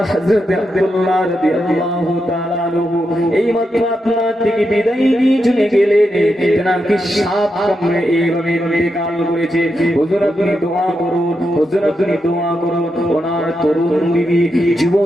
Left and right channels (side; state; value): both; normal; correlation 0.85